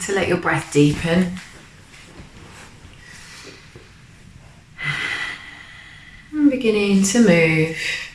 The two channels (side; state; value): both; identical; correlation 1.00